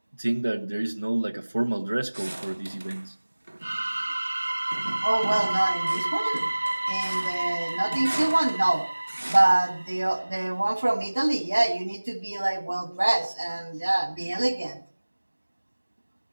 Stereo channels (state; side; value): inverted; both; correlation -1.00